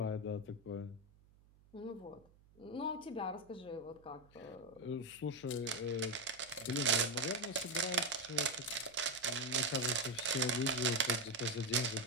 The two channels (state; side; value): noise; right; hum, 27 dB below the sound